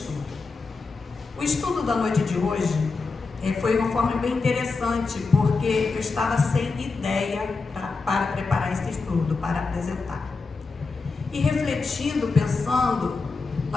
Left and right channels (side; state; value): right; quieter; 4.2 dB